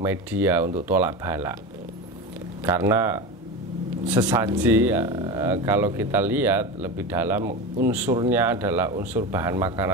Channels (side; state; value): both; normal; correlation 0.24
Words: untuk tolak bala. Karena sesaji kalau kita lihat lebih dalam, unsurnya adalah unsur bahan